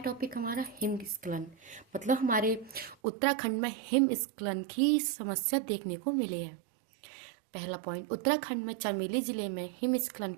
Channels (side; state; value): left; drops out; at 3.0 s